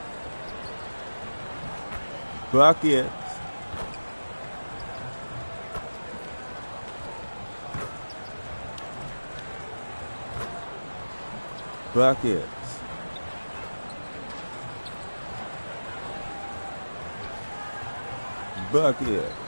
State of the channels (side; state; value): both; inverted; correlation -1.00